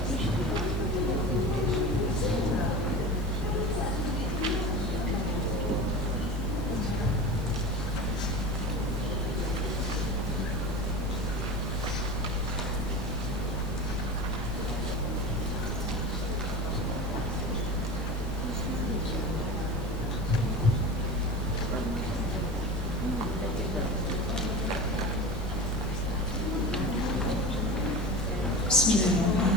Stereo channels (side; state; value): both; normal; correlation 0.30